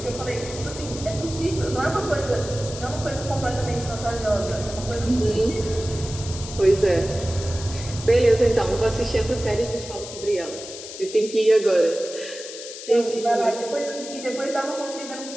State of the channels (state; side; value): noise; left; hiss, 11 dB below the sound